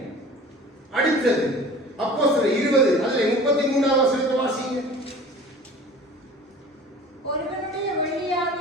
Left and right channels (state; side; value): normal; both; correlation 0.43